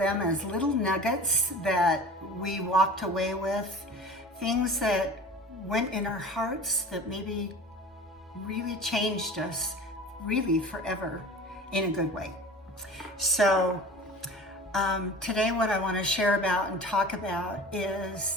as little nuggets that we walked away with, things that went in our hearts that maybe really changed us really forever in a good way. So today what I want to share about and talk about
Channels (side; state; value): both; normal; correlation 0.38